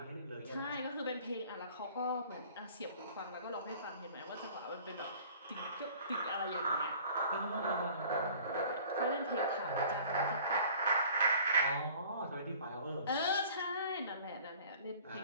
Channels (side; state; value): both; inverted; correlation -0.49